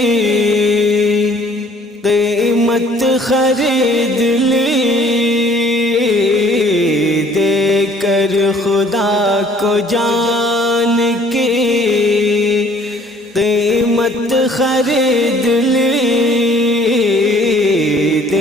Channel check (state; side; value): normal; both; correlation 0.57